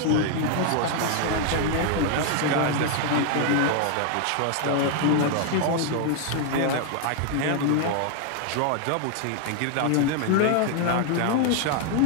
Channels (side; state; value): both; different; correlation 0.00